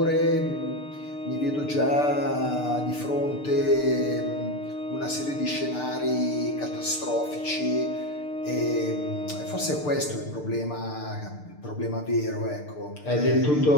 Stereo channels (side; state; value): right; late; 6.7 ms